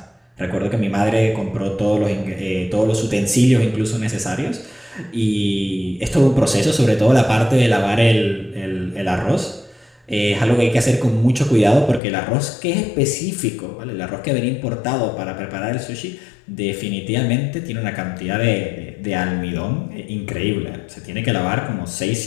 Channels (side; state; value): right; drops out; at 12.0 s